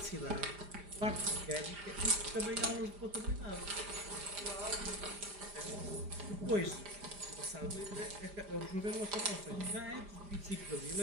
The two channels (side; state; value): left; late; 5.0 ms